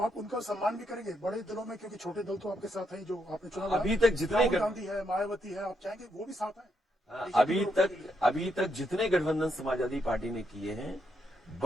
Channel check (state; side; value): normal; both; correlation 0.78